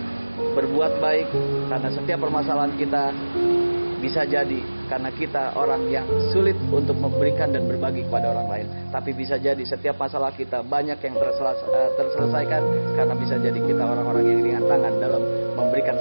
berbuat baik, karena setiap permasalahan kita bisa jadi karena kita orang yang sulit untuk memberikan dan berbagi kepada orang lain. Tapi bisa jadi setiap masalah kita banyak yang terselesaikan karena bisa jadi kita orang-orang yang ringan tangan dalam memberikan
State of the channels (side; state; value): both; inverted; correlation -1.00